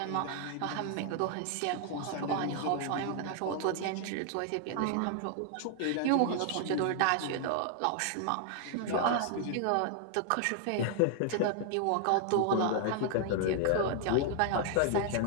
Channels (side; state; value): both; different; correlation 0.00